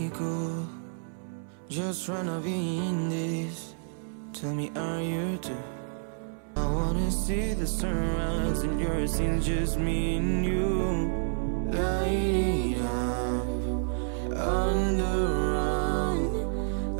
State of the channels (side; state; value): left; silent; 58 dB below the other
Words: cool, just tryna be in this. Tell me, are you too? I wanna see the sunrise and yours scenes, just me and you. Light it up under